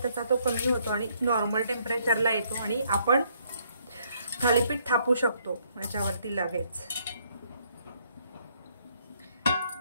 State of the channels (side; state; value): both; inverted; correlation -0.69